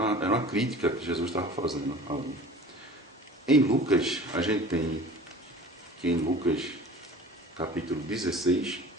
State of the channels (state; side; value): normal; both; correlation 0.42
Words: uma crítica que Jesus estava fazendo ali. Em Lucas, a gente tem que em Lucas, capítulo 16,